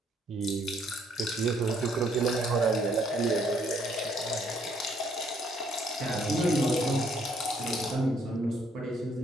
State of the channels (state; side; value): normal; both; correlation 0.67